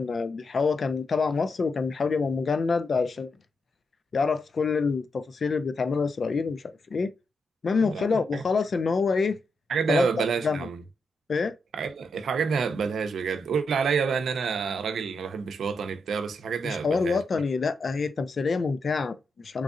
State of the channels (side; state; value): both; normal; correlation 0.83